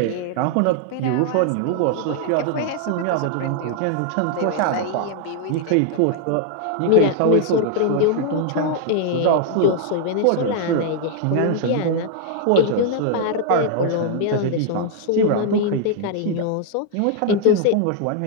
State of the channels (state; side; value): different; both; correlation 0.00